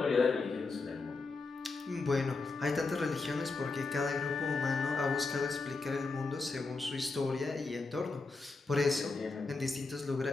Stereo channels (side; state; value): right; quieter; 3.8 dB